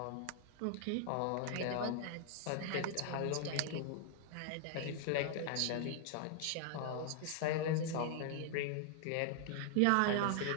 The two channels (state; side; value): different; both; correlation 0.00